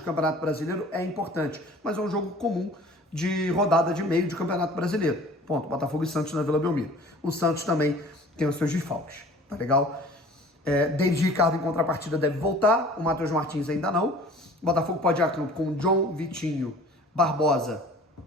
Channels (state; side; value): normal; both; correlation 0.47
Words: Campeonato Brasileiro é importante, mas é um jogo comum de rodada de meio de Campeonato Brasileiro. Ponto. Botafogo e Santos na Vila Belmiro. O Santos também tem os seus desfalques, tá legal? David Ricardo em contrapartida deve voltar, o Matheus Martins ainda não. O Botafogo pode ir a campo com John, Vitinho, Barbosa,